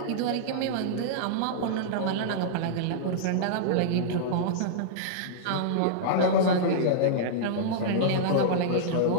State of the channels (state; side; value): different; both; correlation -0.02